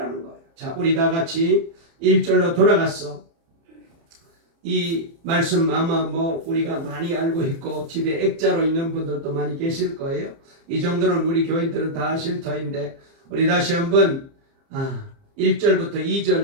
거예요. 자, 우리 다 같이 1절로 돌아갔어. 이 말씀 아마 우리가 많이 알고 있고 집에 액자로 있는 분들도 많이 계실 거예요. 이 정도는 우리 교인들은 다 아실 터인데 우리 다시 한번 1절부터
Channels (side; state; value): left; late; 30 ms